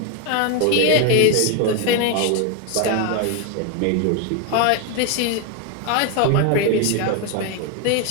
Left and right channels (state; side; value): different; both; correlation 0.01